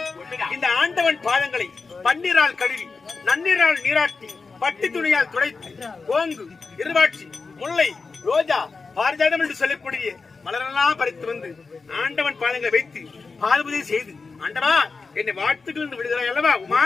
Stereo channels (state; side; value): quieter; right; 4.4 dB